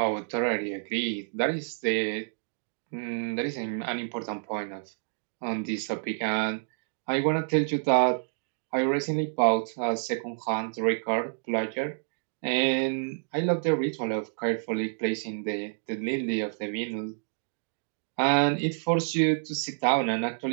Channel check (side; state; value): left; silent; digital silence